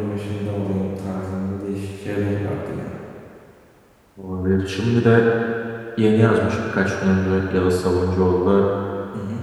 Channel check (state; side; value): identical; both; correlation 1.00